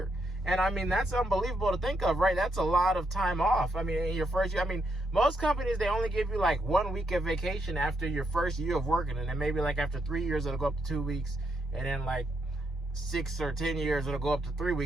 And I mean, that's unbelievable to think of, right? That's a lot of time off. I mean, in your first year, I mean, most companies, they only give you like 1 week of vacation after your first year of working. And then maybe like after 3 years, it'll go up to 2 weeks. And then like 6 or 10 years, it'll go up to 3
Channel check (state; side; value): normal; both; correlation 0.79